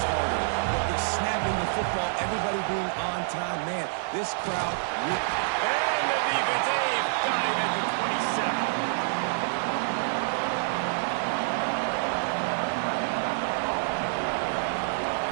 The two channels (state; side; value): silent; left; digital silence